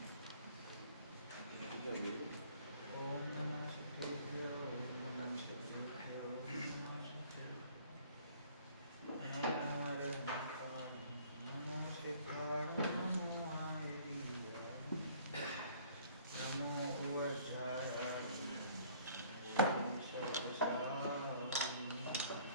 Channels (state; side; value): inverted; both; correlation -0.55